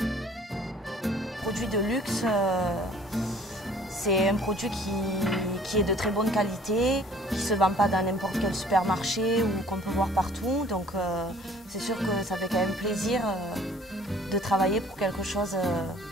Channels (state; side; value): normal; both; correlation 0.54